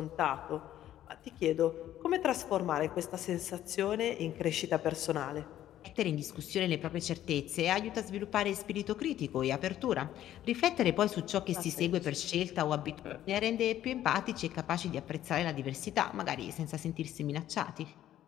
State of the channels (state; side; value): quieter; right; 12.3 dB